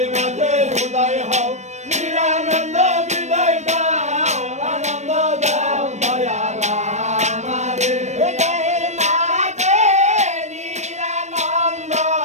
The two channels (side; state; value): left; late; 0.34 ms